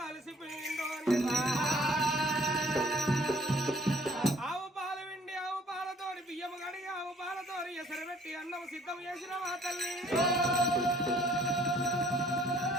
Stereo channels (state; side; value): normal; both; correlation 0.58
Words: అలసిపోయిందో ఆవు పాలు విండి ఆవు పాలతోడి బియ్యం కడిగి ఆవు పాలతోడి ఎసరు పెట్టి అన్నం సిద్ధం చేసిన మా తల్లి